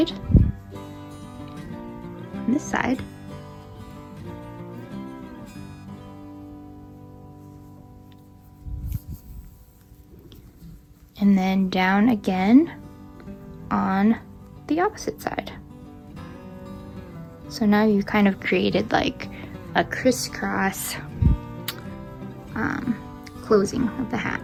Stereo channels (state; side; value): identical; both; correlation 1.00